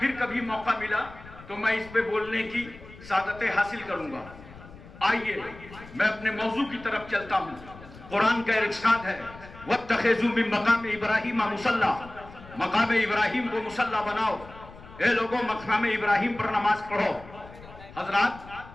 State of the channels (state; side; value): noise; left; rumble, 18 dB below the sound